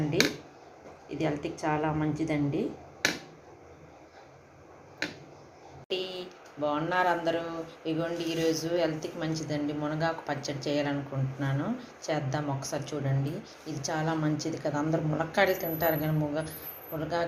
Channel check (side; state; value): both; identical; correlation 1.00